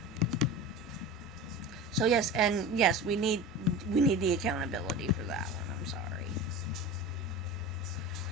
So yes, we need the accountability for that one. I'm sorry.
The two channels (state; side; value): normal; both; correlation 0.31